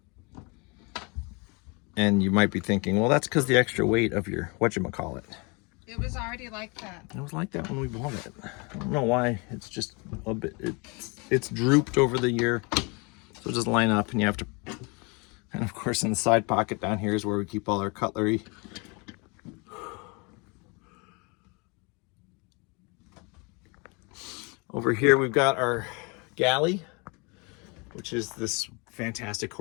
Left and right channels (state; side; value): quieter; right; 30.0 dB